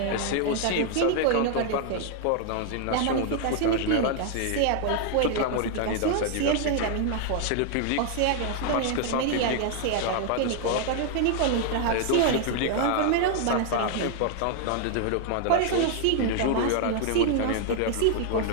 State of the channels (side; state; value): both; different; correlation 0.00